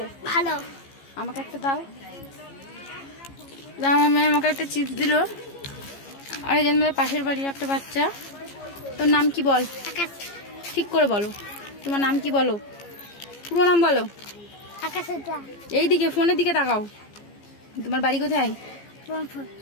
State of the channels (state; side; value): late; right; 15 ms